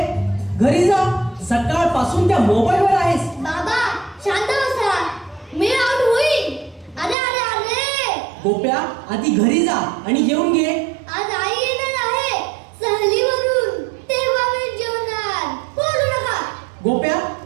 घरी जा. सकाळपासून त्या मोबाईलवर आहेस. बाबा शांत बसा. मी आउट होईल. अरे अरे अरे. गोप्या आधी घरी जा आणि जेवून घे. आज आई येणार आहे सहलीवरून. तेव्हा मी जेवणार. बोलू नका. गोप्या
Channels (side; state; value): left; drops out; at 7.2 s